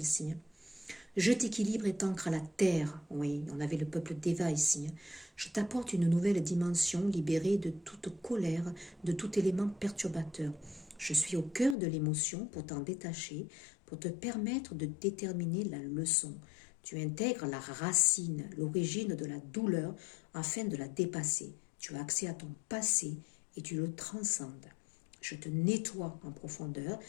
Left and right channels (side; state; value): right; drops out; at 11.8 s